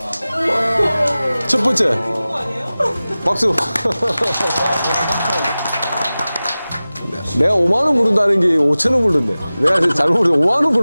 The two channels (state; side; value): inverted; both; correlation -0.97